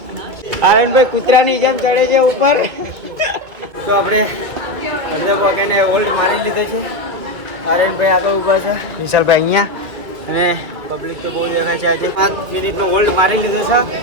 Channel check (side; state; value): left; late; 2.3 ms